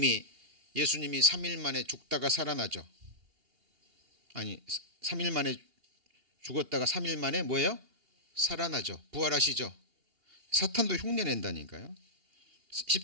3일 만에 죽다가 살아나죠. 아니, 3일 만에 죽었다가 3일 만에 뭐예요? 살아나죠. 부활하시죠. 사탄도 흉내 낸다니까요.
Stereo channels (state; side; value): late; left; 2.8 ms